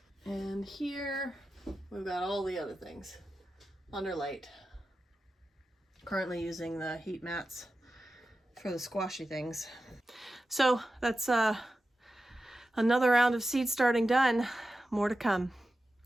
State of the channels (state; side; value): normal; both; correlation 0.92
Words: And here we've got all the other things under light. Currently using the heat mats for the squashy things. So that's another round of seed starting done. More to come.